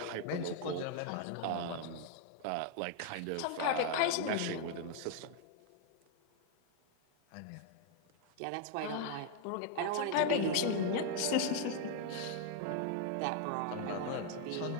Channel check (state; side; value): different; both; correlation 0.00